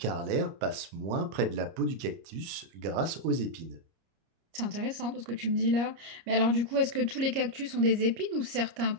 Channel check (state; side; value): late; left; 30 ms